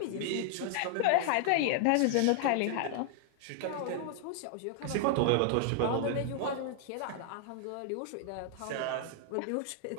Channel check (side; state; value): both; different; correlation 0.00